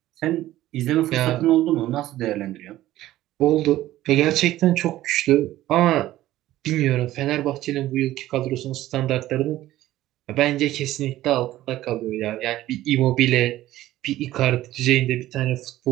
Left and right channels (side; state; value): left; quieter; 14.9 dB